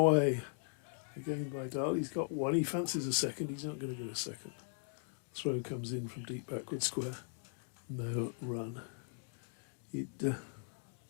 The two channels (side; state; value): right; silent; digital silence